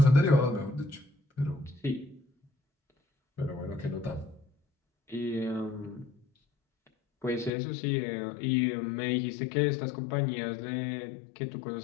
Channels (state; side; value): drops out; right; at 7.5 s